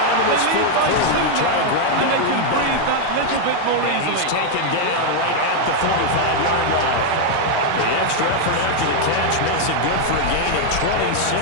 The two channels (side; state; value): both; different; correlation 0.00